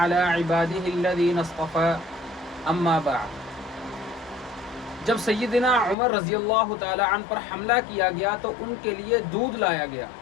عبادہ الذین اصطفی اما بعد۔ جب سیدنا عمر رضی اللہ تعالی عنہ پر حملہ کیا گیا تو ان کے لیے دودھ لایا گیا۔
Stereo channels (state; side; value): drops out; right; at 6.0 s